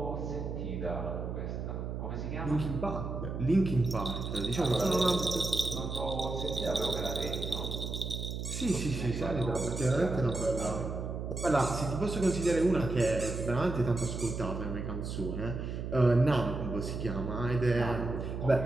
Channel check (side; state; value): right; noise; hum, 5 dB below the sound